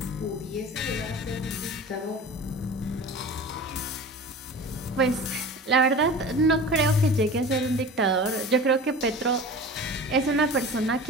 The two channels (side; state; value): both; normal; correlation 0.36